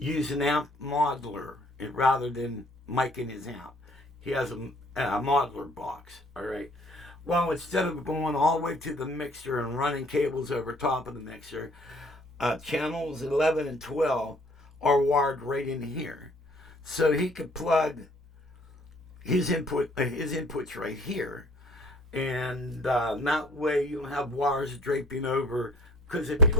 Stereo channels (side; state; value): both; normal; correlation 0.56